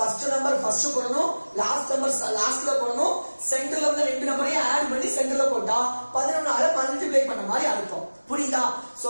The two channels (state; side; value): inverted; both; correlation -1.00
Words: நம்பர் ஃபர்ஸ்ட் போடணும், லாஸ்ட் நம்பர் லாஸ்ட்ல போடணும், சென்டர்ல வந்து ரெண்டு நம்பரையும் ஆட் பண்ணி சென்டர்ல போட்டா 11ஆல மல்டிப்ளை பண்ண மாதிரி அர்த்தம். புரியுதா? சோ